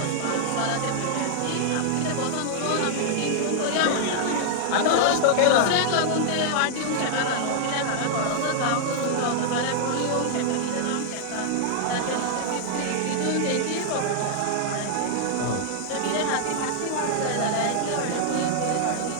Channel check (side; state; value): both; different; correlation -0.01